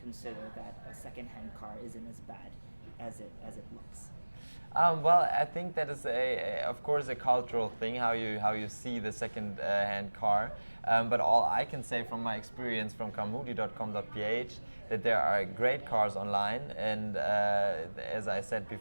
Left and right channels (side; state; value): both; inverted; correlation -1.00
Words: that a second-hand car isn't as bad as it looks. Well, I think that is of course, a cultural thing how you see the second-hand car. But all I can say from my experience from carmudi.com.ph that there are great cars online, and as I said